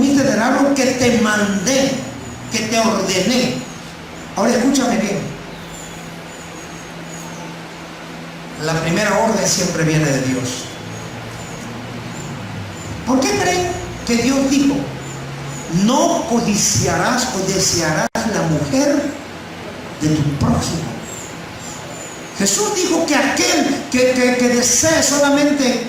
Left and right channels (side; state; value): both; identical; correlation 1.00